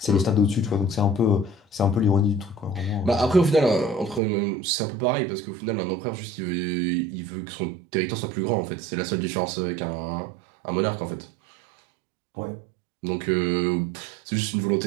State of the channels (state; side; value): drops out; left; at 4.2 s